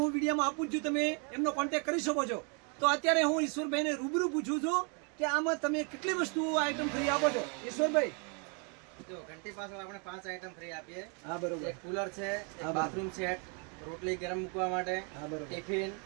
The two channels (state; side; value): quieter; left; 36.7 dB